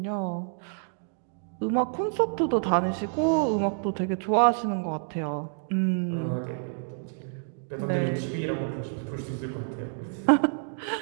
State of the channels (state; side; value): silent; left; digital silence